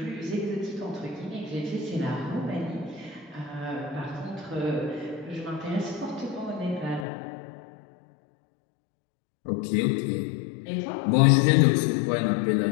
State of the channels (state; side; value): drops out; right; at 7.1 s